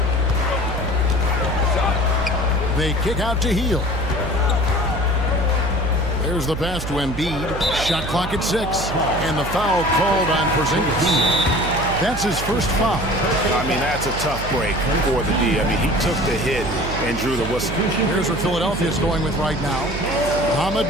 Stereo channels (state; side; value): noise; right; hum, 7 dB below the sound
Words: They kick out to Hield. There's the pass to Embiid. Shot clock at 6. And the foul called on Porzingis. That's his first foul. I mean, that's a tough break for the D. I mean, he took the hit and drew the whistle. Here's what Philadelphia's going with right now. Ahmed